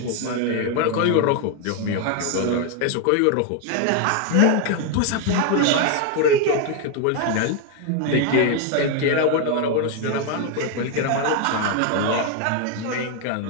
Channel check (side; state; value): both; different; correlation 0.01